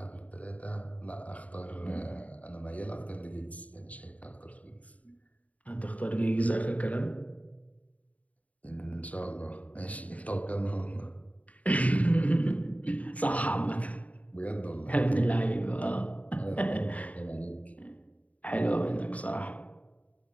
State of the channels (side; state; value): right; late; 0.069 ms